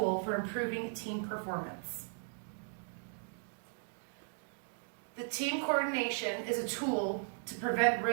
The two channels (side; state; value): left; silent; 53 dB below the other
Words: for improving team performance. The team coordination is a tool to prevent